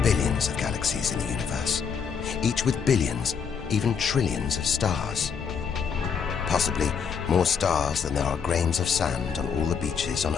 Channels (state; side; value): quieter; right; 6.6 dB